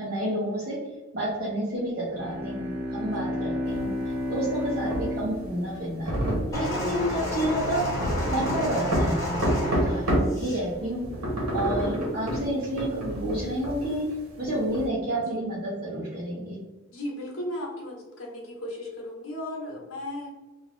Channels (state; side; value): normal; both; correlation 0.39